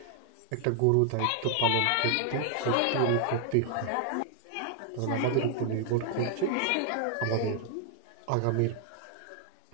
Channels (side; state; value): both; different; correlation 0.00